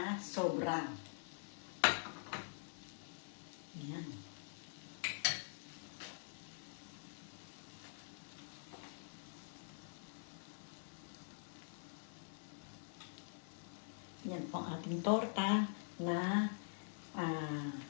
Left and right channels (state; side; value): silent; right; digital silence